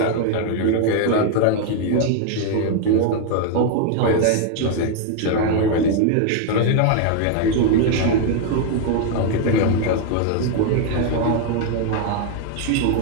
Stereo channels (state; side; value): different; both; correlation 0.00